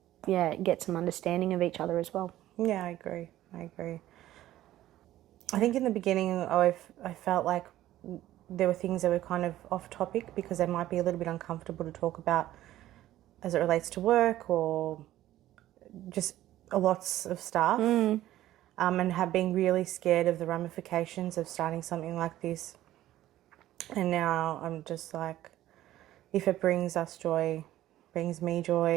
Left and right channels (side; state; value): left; quieter; 14.1 dB